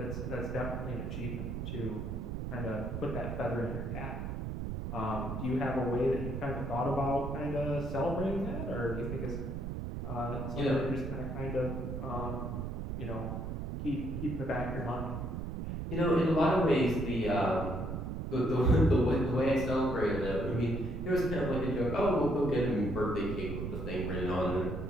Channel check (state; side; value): noise; right; rumble, 4 dB below the sound